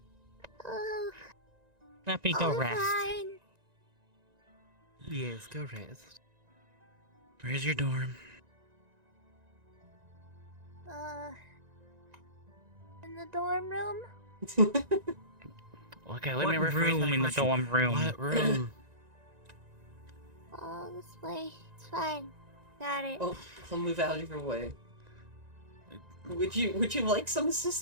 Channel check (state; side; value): late; left; 1.9 ms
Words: Oh, Lippy, go I'm rest. fine. Yes, go rest. Where's your dorm? In the dorm room. Okay, let What me rephrase room my in the question. dorm room? What room? Oh, this way. It's fine. Got it. Oh, I'll move out of your way. Would you like some